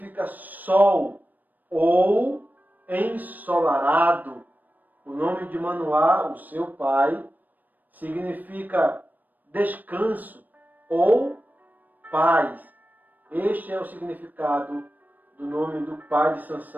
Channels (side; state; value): left; late; 0.085 ms